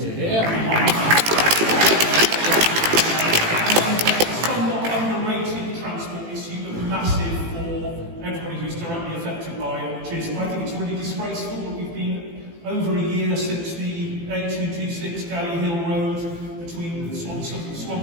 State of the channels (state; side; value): late; left; 18 ms